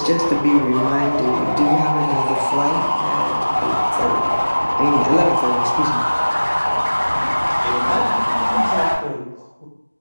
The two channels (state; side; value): inverted; both; correlation -1.00